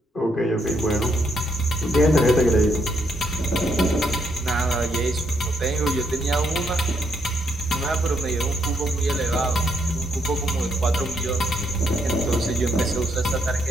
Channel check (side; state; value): both; normal; correlation 0.75